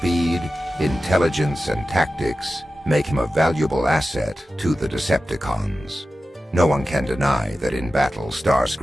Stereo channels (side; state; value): both; normal; correlation 0.93